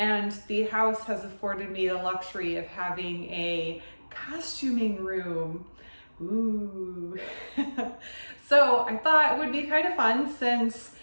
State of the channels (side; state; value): both; inverted; correlation -1.00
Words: the house has afforded me the luxury of having a costuming room. Ooh. So I thought it would be kind of fun since